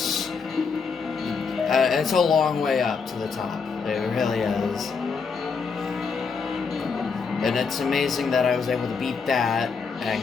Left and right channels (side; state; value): right; quieter; 5.4 dB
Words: It's a long way up to the top. It really is. And it's amazing that I was able to beat that